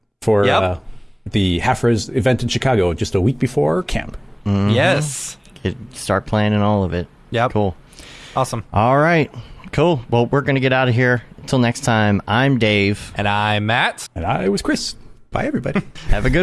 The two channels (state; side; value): identical; both; correlation 1.00